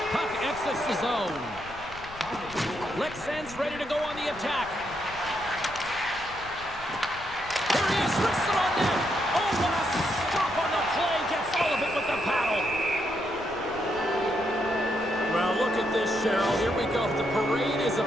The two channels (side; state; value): left; noise; rumble, 17 dB below the sound